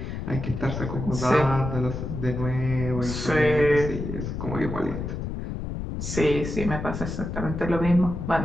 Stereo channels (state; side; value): noise; left; rumble, 5 dB below the sound